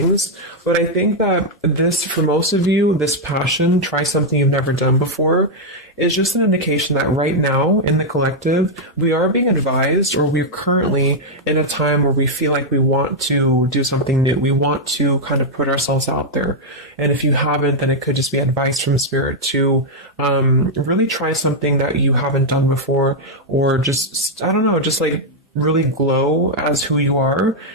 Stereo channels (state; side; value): normal; both; correlation -0.02